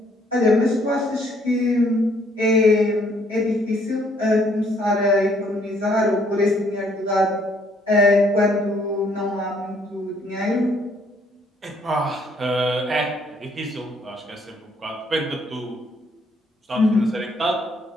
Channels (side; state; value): both; normal; correlation 0.66